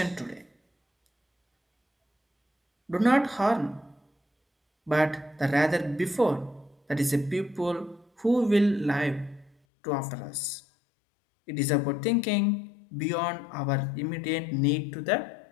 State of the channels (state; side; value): drops out; right; at 9.6 s